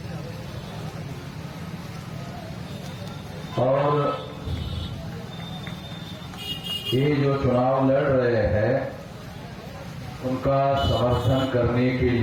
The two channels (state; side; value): identical; both; correlation 1.00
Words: और ये जो चुनाव लड़ रहे हैं उनका समर्थन करने के